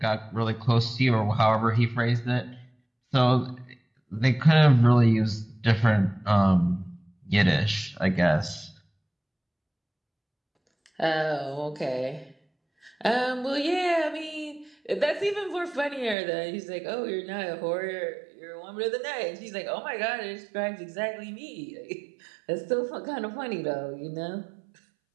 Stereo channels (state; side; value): drops out; left; at 16.2 s